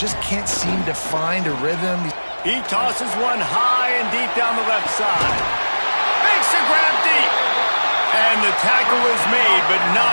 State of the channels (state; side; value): inverted; both; correlation -1.00